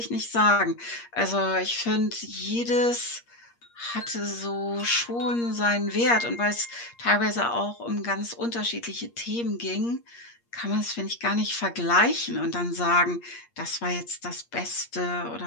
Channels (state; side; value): late; right; 8.5 ms